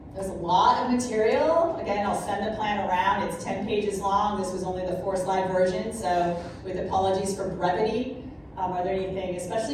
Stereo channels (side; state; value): both; identical; correlation 1.00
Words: There's a lot of material. Again, I'll send the plan around. It's 10 pages long. This was only the 4-slide version, so with apologies for brevity. Are there anything,